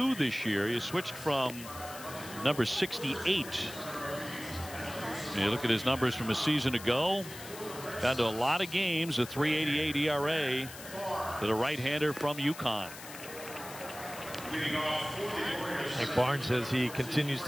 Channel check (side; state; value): left; noise; hiss, 14 dB below the sound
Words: this year. He switched from number 68. You look at his numbers from a season ago. Down to a lot of games, a 3.88 ERA for the right-hander from UConn. Like Barnes, as he continues